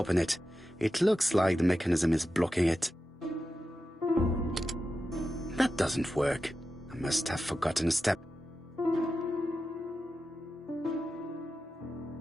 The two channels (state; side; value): normal; both; correlation 0.91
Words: it. It looks like the mechanism is blocking it. That doesn't work. I must have forgotten a step.